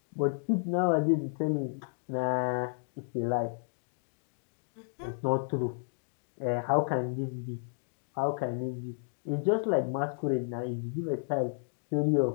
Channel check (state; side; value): silent; right; digital silence